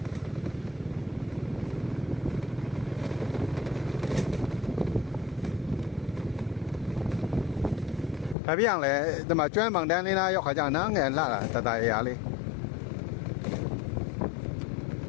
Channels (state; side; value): drops out; right; at 8.3 s